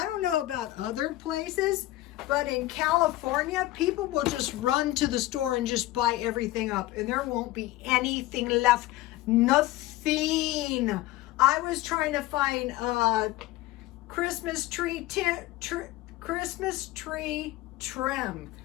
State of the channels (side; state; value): right; quieter; 17.0 dB